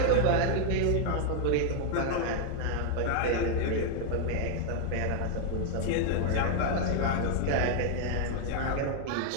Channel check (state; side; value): different; both; correlation 0.00